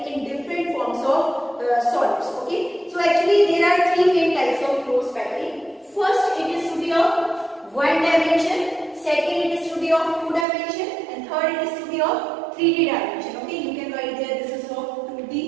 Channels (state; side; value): drops out; left; at 10.5 s